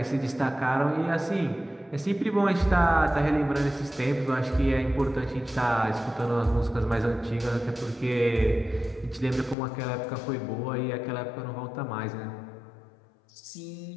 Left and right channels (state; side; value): drops out; right; at 9.6 s